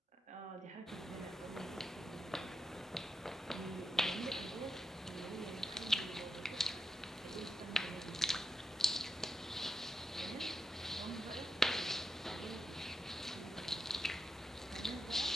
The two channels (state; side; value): normal; both; correlation 0.86